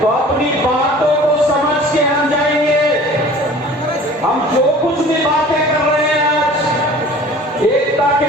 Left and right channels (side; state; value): both; normal; correlation 0.45